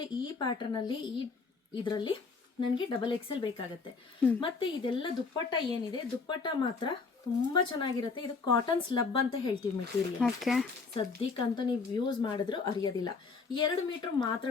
ಈ ಪ್ಯಾಟರ್ನ್ ಅಲ್ಲಿ ಇದರಲ್ಲಿ ನನಗೆ XXL ಬೇಕಾಗುತ್ತೆ. ಮತ್ತೆ ಇದೆಲ್ಲ ದುಪ್ಪಟ್ಟ ಏನಿದೆ, ದುಪ್ಪಟ್ಟ ಮಾತ್ರ ತುಂಬಾ ಚೆನ್ನಾಗಿರುತ್ತೆ. ಇದು ಕಾಟನ್ ಸ್ಲಬ್ ಅಂತ ಹೇಳ್ತೀವಿ ಮೆಟೀರಿಯಲ್. ಓಕೆ. ಸದ್ಯಕ್ಕಂತೂ ನೀವು ಯೂಸ್ ಮಾಡಿದ್ರು ಅರಿಯೋದಿಲ್ಲ. 2 ಮೀಟರ್ ಮಾತ್ರ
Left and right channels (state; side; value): quieter; right; 4.6 dB